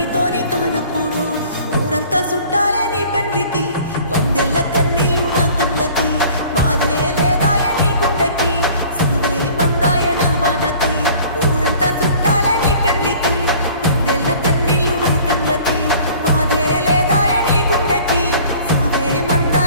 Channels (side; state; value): both; inverted; correlation -0.49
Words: కానప్పుడు ఊరంతా చుట్టాలే నీ పెండ్లికి వందెల్ల కన్నీళ్ళు నా కళ్ళకి బాధే లేదాయ నీ గుండెకి సులువే మందాయ నా బాధకి ఊరంతా చుట్టాలే నీ పెండ్లికి వందెల్ల కన్నీళ్ళు నా కళ్ళకి బాధే లేదాయ నీ గుండెకి సావే